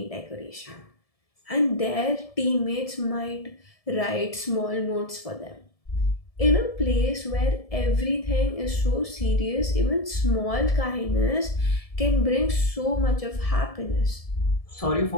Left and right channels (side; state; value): right; late; 1.7 ms